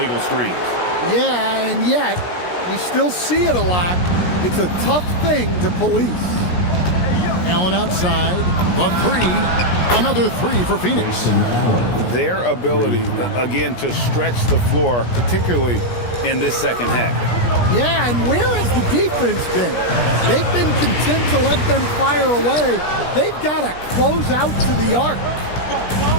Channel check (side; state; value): right; late; 17 ms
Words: screens. Yeah, and yet we still see it a lot. It's a tough thing to police. Allen outside, the 3, another 3 for Phoenix. Their ability, again, to stretch the floor, particularly in this second half. Yeah, and where has the defense been? They've been content to let them fire away. They've got to close out to the arc.